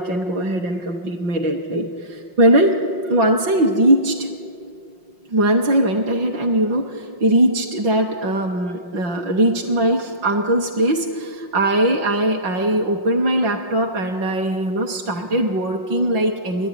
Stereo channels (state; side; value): late; left; 5.6 ms